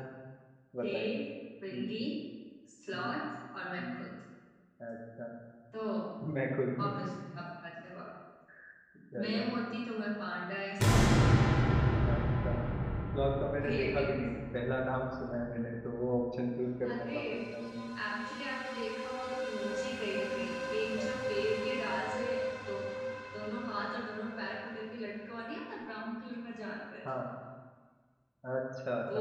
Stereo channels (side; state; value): both; identical; correlation 1.00